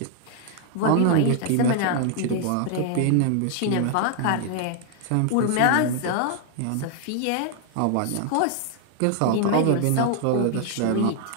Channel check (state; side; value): different; both; correlation 0.00